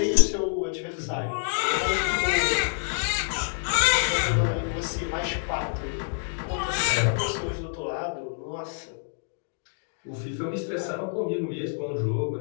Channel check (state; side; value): silent; right; digital silence